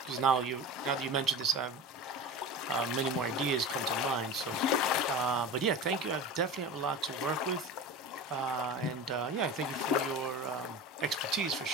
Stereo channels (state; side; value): normal; both; correlation 0.30